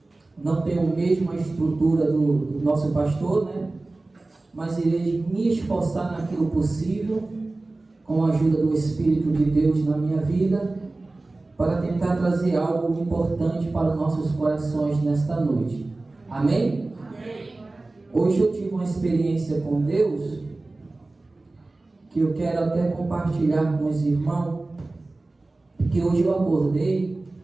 não tenho a mesma estrutura do nosso pastor, mas irei me esforçar naquilo possível, com a ajuda do Espírito de Deus na minha vida, para tentar trazer algo importante para os nossos corações nesta noite. Amém? Amém. Hoje eu tive uma experiência com Deus, que eu quero até compartilhar com os irmãos, que hoje eu acordei,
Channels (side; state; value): left; quieter; 3.1 dB